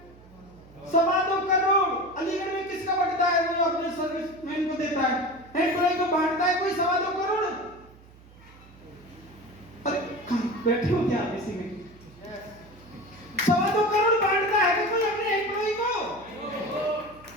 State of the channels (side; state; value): right; noise; hum, 23 dB below the sound